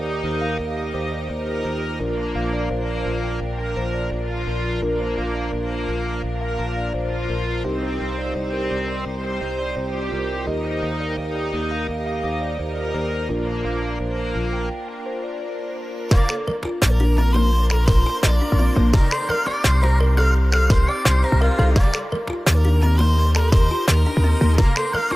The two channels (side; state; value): both; normal; correlation 0.96